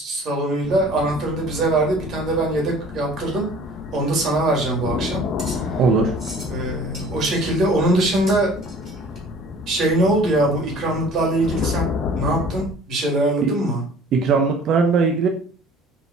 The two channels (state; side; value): normal; both; correlation 0.49